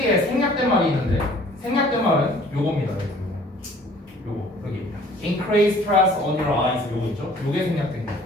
생략된 말이 있는데 생략된 말은 요겁니다. 요거 여기 increase stress on your eyes 요거 있죠? 요게 생략된 거예요.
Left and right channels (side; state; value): both; normal; correlation 0.53